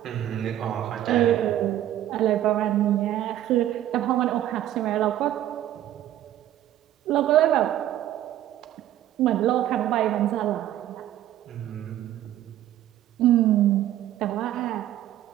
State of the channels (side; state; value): left; quieter; 12.6 dB